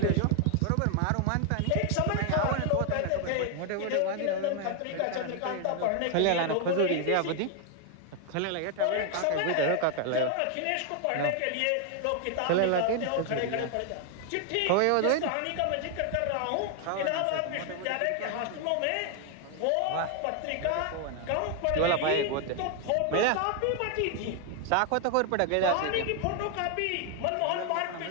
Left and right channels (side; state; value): both; different; correlation 0.00